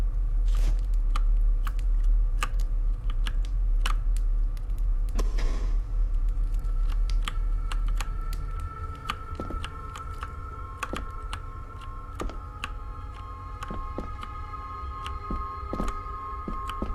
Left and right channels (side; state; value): both; identical; correlation 1.00